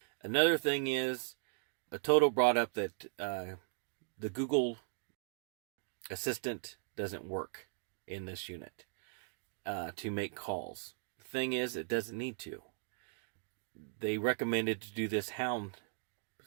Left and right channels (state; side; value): silent; left; digital silence